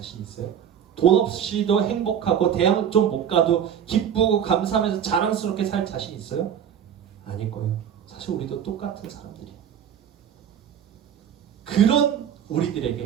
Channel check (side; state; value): left; quieter; 8.9 dB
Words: 있어요? 돈 없이도 행복하고 대학 좀 못 가도 기쁘고 감사하면서 자랑스럽게 살 자신 있어요? 아닐 거예요. 사실 우리도 똑같은 사람들이에요. 그런 우리들에게